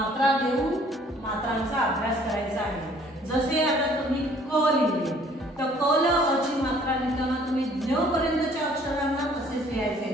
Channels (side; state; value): both; normal; correlation 0.57